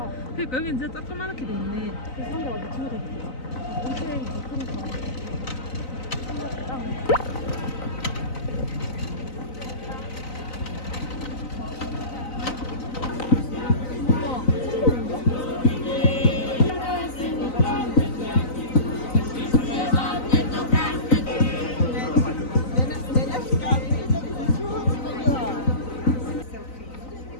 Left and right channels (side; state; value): right; late; 3.9 ms